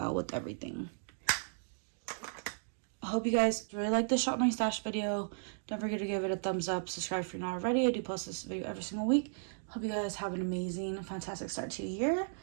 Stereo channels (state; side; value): silent; left; digital silence